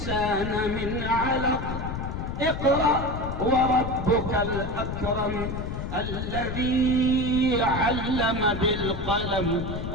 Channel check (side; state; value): left; noise; rumble, 5 dB below the sound